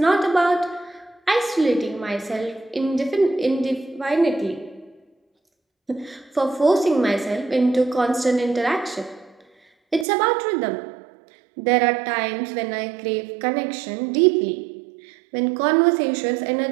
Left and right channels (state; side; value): drops out; left; at 10.1 s